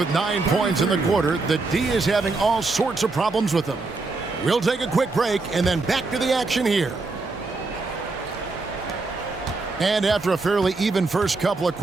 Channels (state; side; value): quieter; left; 3.6 dB